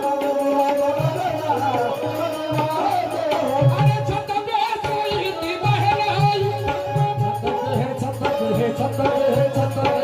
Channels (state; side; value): identical; both; correlation 1.00